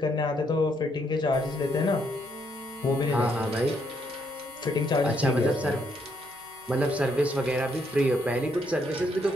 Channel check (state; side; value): normal; both; correlation 0.73